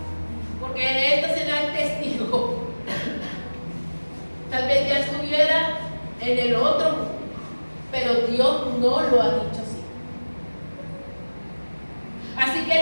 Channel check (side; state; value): both; inverted; correlation -1.00